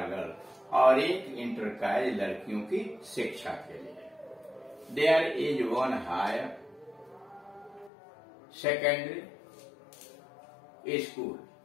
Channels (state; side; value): drops out; right; at 7.9 s